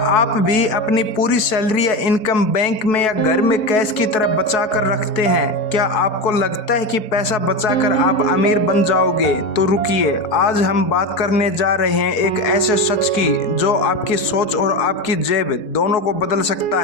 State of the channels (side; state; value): right; late; 4.7 ms